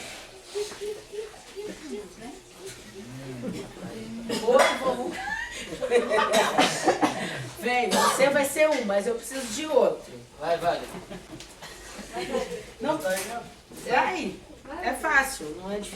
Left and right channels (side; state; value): both; identical; correlation 1.00